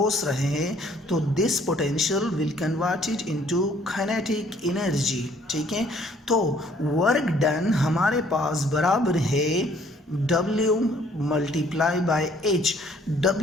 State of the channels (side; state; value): both; normal; correlation 0.61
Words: रहे हैं तो this potential will converted into kinetic energy, ठीक है। तो वर्क डन हमारे पास बराबर है W multiply by H.